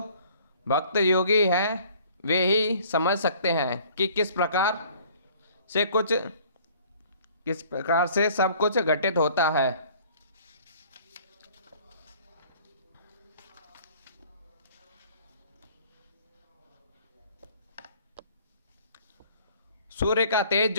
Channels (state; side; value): inverted; both; correlation -0.54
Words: भक्त योगी हैं वे ही समझ सकते हैं कि किस प्रकार से सब कुछ घटित होता है। सूर्य का तेज